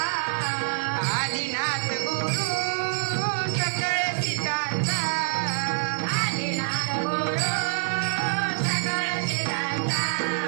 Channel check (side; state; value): left; silent; digital silence